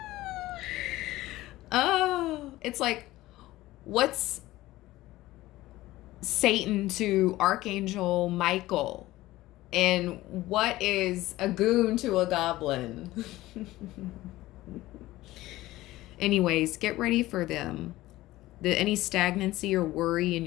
Oh, it's like, what's Satan to Archangel Michael? And what is a goon to a goblin? Anyways, get ready for them. Any stagnancy or worry in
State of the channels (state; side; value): quieter; right; 17.1 dB